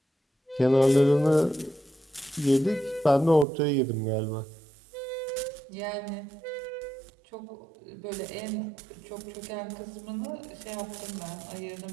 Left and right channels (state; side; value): drops out; left; at 3.5 s